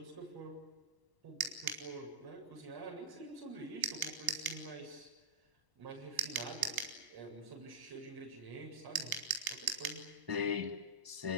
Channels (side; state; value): left; late; 1.0 ms